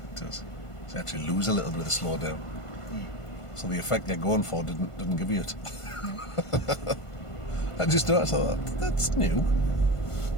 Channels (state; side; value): late; right; 1.5 ms